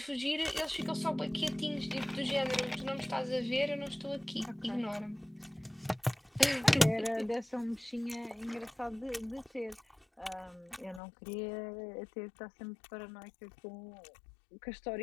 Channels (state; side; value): drops out; right; at 11.0 s